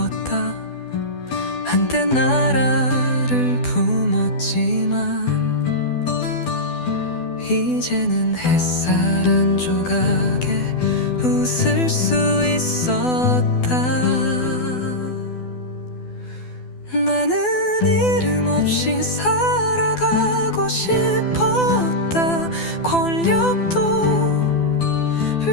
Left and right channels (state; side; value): late; right; 12 ms